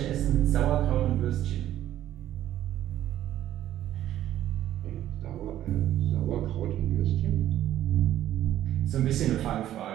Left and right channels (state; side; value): quieter; left; 12.5 dB